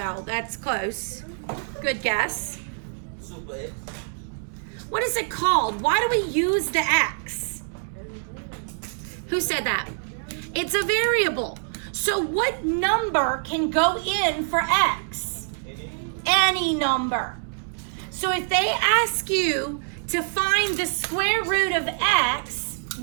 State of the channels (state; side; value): silent; left; digital silence